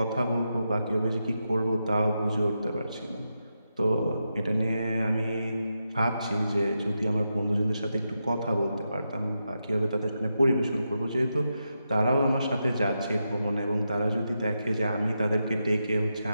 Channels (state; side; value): inverted; both; correlation -0.86